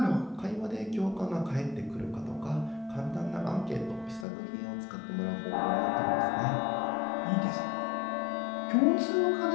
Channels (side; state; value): right; drops out; at 4.2 s